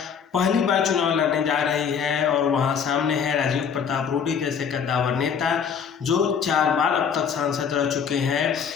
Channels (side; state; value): right; quieter; 7.0 dB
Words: पहली बार चुनाव लड़ने जा रही है और वहां सामने है राजीव प्रताप रूडी जैसे कद्दावर नेता जो 4 बार अब तक सांसद रह चुके हैं